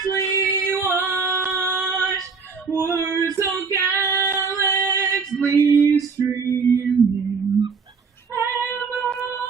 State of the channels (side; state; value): left; quieter; 5.1 dB